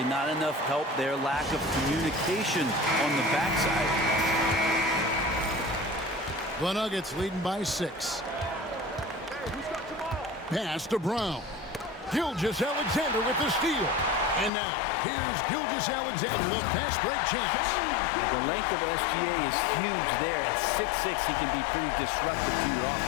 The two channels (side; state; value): right; drops out; at 14.5 s